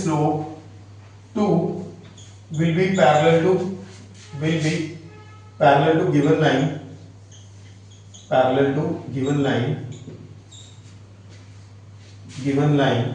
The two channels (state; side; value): identical; both; correlation 1.00